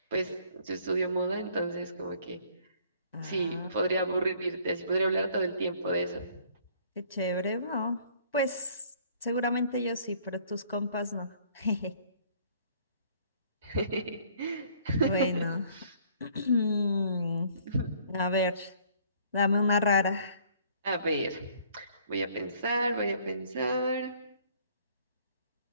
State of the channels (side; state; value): both; inverted; correlation -0.59